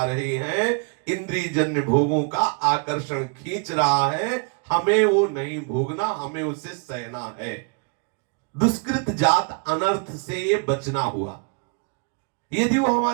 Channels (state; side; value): quieter; left; 37.3 dB